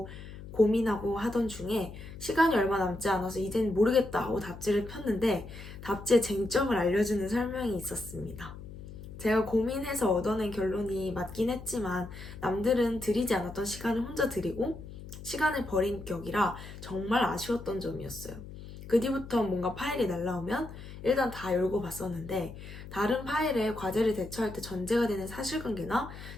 고민하고 하던 중에 시간이 얼마 남지 않아서 이젠 모르겠다 하고 답지를 폈는데 답지의 쟁점을 알려주는 설명이 있었습니다. 제가 고민해서 얻어낸 결론이 맞긴 했지만 남들은 들이지 않았던 시간을 혼자 들이고 시간을 버린 격이라 정말 아쉬웠던 점이었어요. 그 뒤부터 뭔가 파일이 날라오면 일단 다 열고 봤었는데 다른 파일에 과제를 대처할 때 전제가 되는 사실관계나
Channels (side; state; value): left; noise; hum, 13 dB below the sound